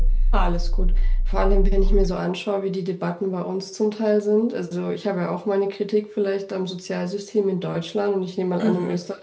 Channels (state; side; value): identical; both; correlation 1.00